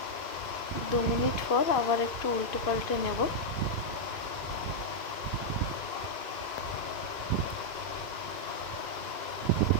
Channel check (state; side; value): late; right; 2.5 ms